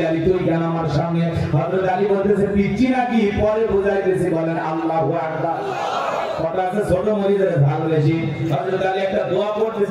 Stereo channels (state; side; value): identical; both; correlation 1.00